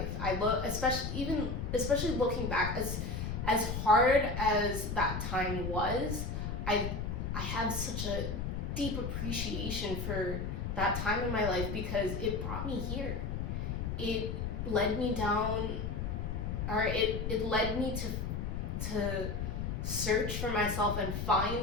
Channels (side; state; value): left; noise; rumble, 3 dB below the sound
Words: I look, especially looking back, as hard as that time was, I have such a deep appreciation for that time in my life, because it brought me here. It led me down, or it led me to search for myself and